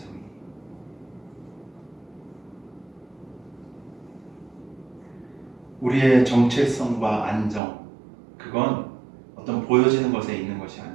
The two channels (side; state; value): left; drops out; at 7.6 s